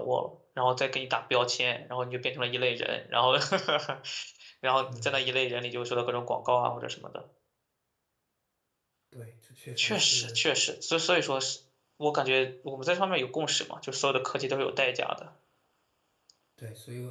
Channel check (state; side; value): identical; both; correlation 1.00